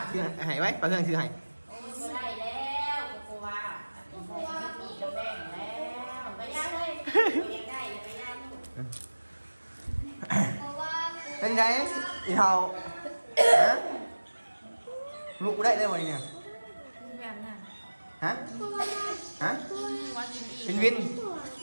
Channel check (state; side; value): inverted; both; correlation -1.00